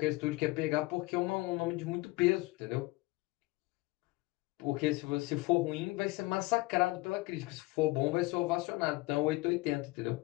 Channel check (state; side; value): quieter; right; 22.0 dB